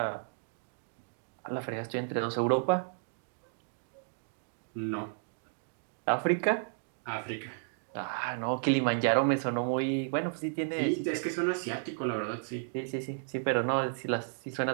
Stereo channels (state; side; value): silent; left; digital silence